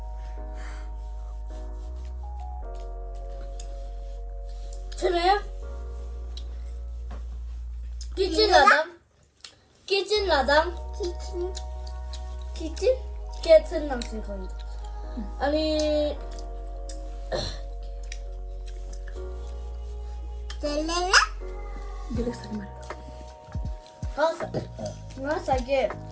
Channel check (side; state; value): both; identical; correlation 1.00